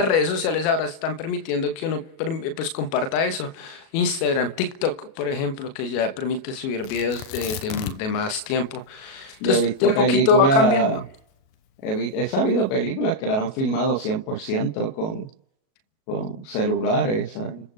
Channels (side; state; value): right; late; 37 ms